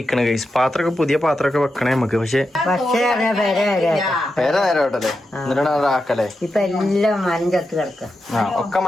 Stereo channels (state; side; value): normal; both; correlation 0.88